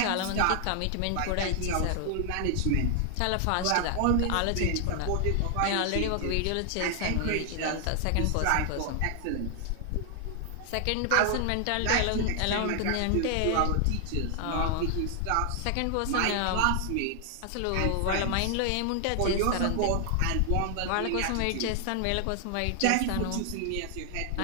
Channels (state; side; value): different; both; correlation 0.00